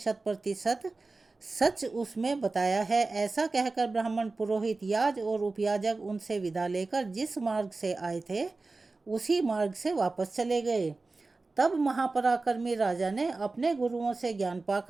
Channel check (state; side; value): quieter; left; 3.6 dB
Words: सच उसमें बताया है। ऐसा कहकर ब्राह्मण, पुरोहित, याज और उपयाजक उनसे विदा लेकर जिस मार्ग से आए थे उसी मार्ग से वापस चले गए। तब महापराक्रमी राजा ने अपने गुरुओं से ज्ञान